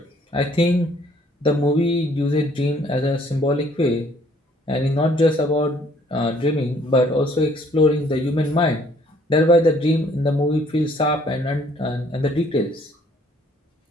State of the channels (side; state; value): both; normal; correlation 0.62